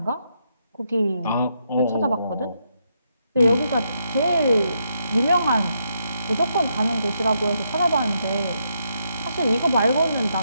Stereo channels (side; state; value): both; inverted; correlation -0.79